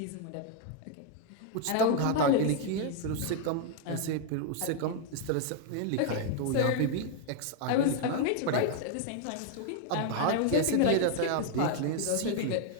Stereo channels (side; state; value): both; different; correlation 0.00